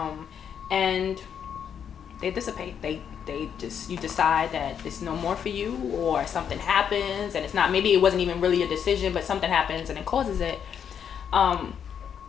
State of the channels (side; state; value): right; quieter; 8.1 dB